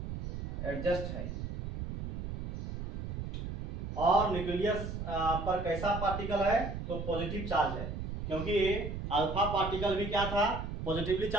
एडजस्ट है। और न्यूक्लियस पर कैसा पार्टिकल है, तो पॉजिटिव चार्ज है, क्योंकि अल्फा पार्टिकल भी क्या था, पॉजिटिवली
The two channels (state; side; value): noise; right; rumble, 5 dB below the sound